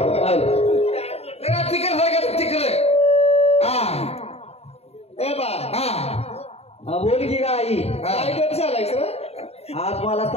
तिकड सारखं तिकडे बोल की आई, काय गप झालाय सर आज मला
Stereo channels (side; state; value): right; late; 0.30 ms